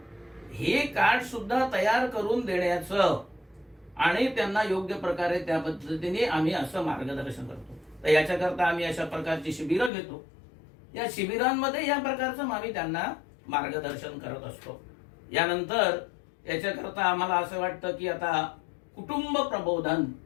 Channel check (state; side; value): drops out; right; at 9.9 s